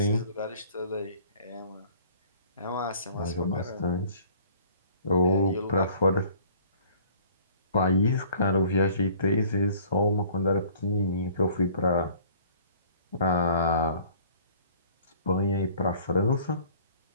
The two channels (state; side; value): inverted; both; correlation -0.53